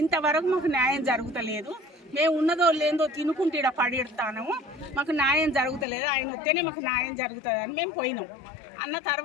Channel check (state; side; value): drops out; right; at 5.9 s